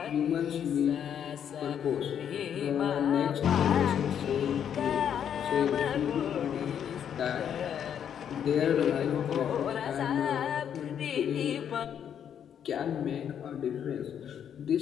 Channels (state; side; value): quieter; right; 8.8 dB